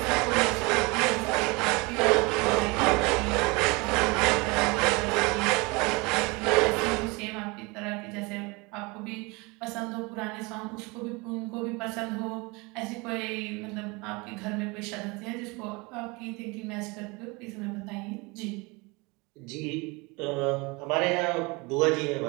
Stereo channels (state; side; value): quieter; left; 26.5 dB